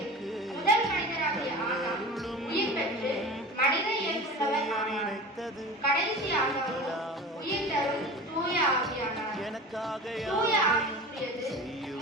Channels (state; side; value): normal; both; correlation 0.35